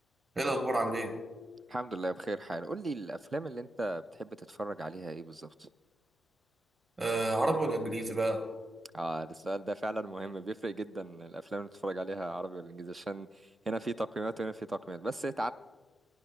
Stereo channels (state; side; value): normal; both; correlation 0.88